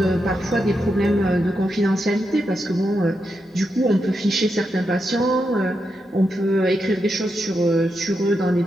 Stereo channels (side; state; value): both; normal; correlation 0.85